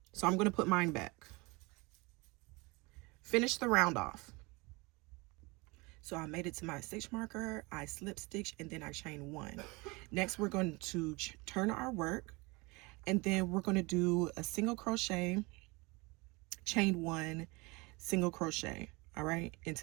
So I'm going to put mine back. Finish the round off. So I made it to my stitch marker, I slip stitch, and then I chain 1. Next, we're going to turn our work, and then we're going to do a single crochet, chain 1, single crochet, all right,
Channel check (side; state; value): left; quieter; 25.7 dB